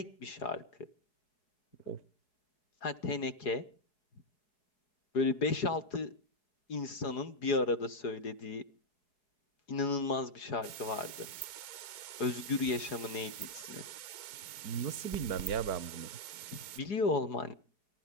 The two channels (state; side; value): late; right; 4.7 ms